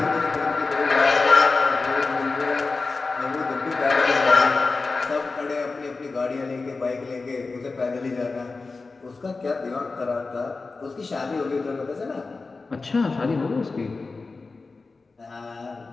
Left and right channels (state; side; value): quieter; right; 3.9 dB